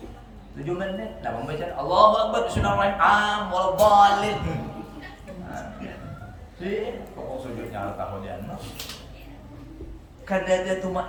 7 menit, nah membaca Allahu Akbar bismillahirrahmanirrahim wal dhalin. Si pokok sujudnya al tahodian mah. Kada ada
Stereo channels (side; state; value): both; identical; correlation 1.00